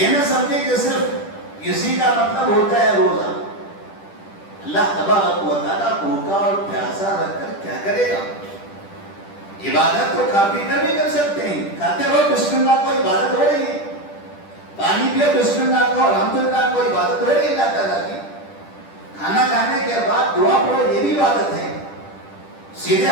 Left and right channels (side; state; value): right; late; 10 ms